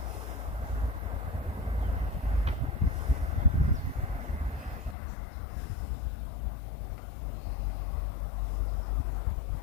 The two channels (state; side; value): drops out; right; at 5.0 s